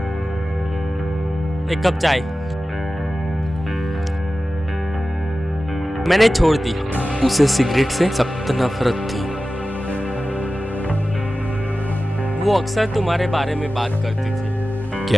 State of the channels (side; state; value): both; normal; correlation 0.95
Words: एक कप चाय। मैंने छोड़ दी। उसे सिगरेट से सख्त नफरत थी। वो अक्सर तुम्हारे बारे में बात करती थी।